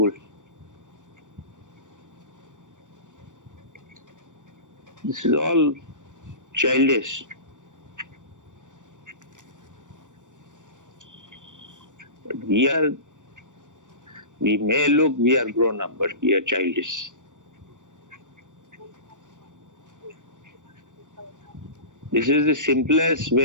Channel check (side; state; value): left; late; 0.87 ms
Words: This is all childish. But we may look we are grown up, but we are childish. This is the simplest